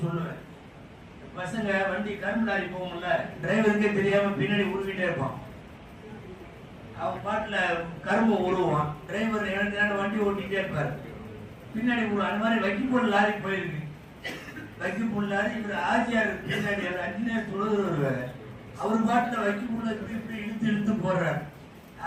சொல்லுவேன். பசங்க வண்டி கரும்பு லாரி போகும்ல, டிரைவருக்கே தெரியாம பின்னாடி உருவிட்டே இருப்பான். அவன் பாட்டுல கரும்பு உருவான், டிரைவர் எனக்கு வண்டி ஓட்டிகிட்டே இருப்பாரு, பின்னாடி அந்த மாதிரி வைக்கப்போல் லாரி போயிருக்கு. வைக்கப்போல் லாரி இவர் ஆஜியார் பின்னாடி அஞ்சினியர் தொழுகிறவர், அவர் பாட்டுல வைக்கப்போல இப்படி இழுத்து இழுத்து போடுறாரு.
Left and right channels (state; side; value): identical; both; correlation 1.00